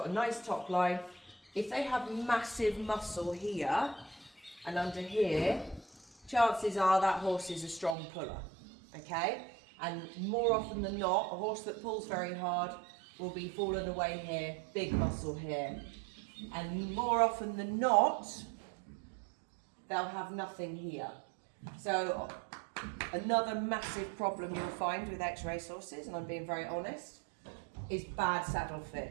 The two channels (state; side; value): drops out; left; at 8.0 s